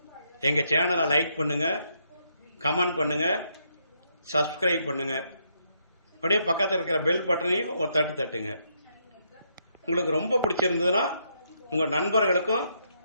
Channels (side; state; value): both; inverted; correlation -0.75